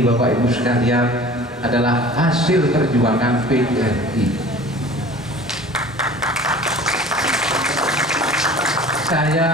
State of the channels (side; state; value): both; normal; correlation 0.43